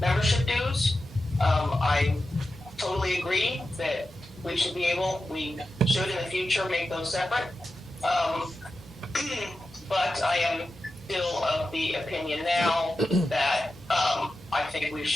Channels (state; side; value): normal; both; correlation 0.91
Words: dues. I totally agree that we should in the future make those separate. But I am still of the opinion now that I think we